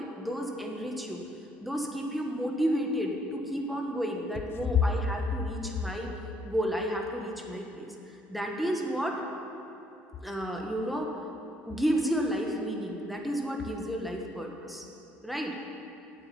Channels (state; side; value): normal; both; correlation 0.69